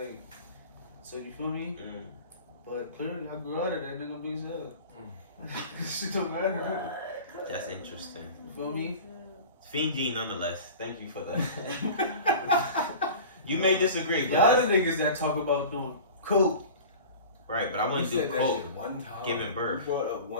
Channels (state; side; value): inverted; both; correlation -0.37